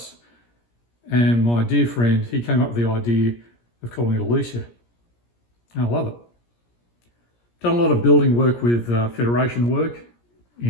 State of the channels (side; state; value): right; late; 17 ms